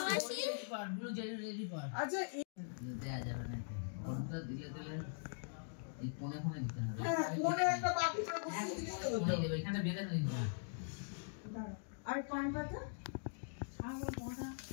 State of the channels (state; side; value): silent; right; digital silence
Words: ব্লু জেলি পার আচ্ছা। দেয়া যাবে না, ওটা দিলে দিলে এই কোণে কোণে দিতে হবে। মনে একটা বাকি থাকবে। এই দেবে, এখানে বেঁধে দিবি না। আর পান পাতা